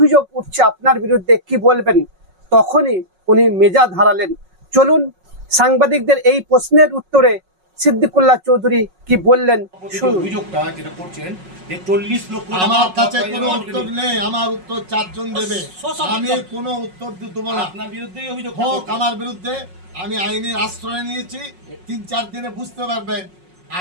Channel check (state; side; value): late; left; 5.4 ms